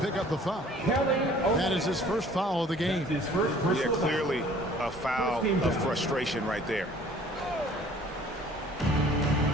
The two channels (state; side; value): normal; both; correlation 0.53